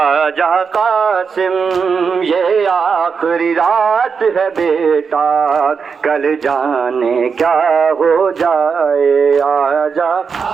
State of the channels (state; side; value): quieter; left; 5.8 dB